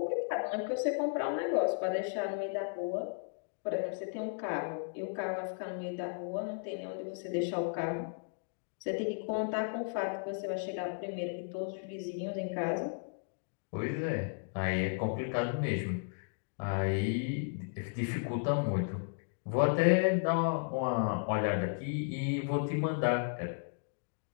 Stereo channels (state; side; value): silent; right; digital silence